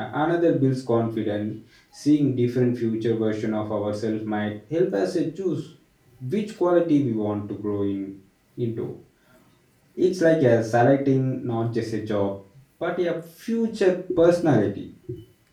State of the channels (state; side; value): identical; both; correlation 1.00